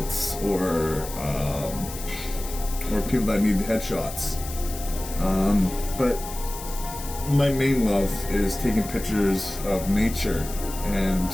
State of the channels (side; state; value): left; noise; hiss, 12 dB below the sound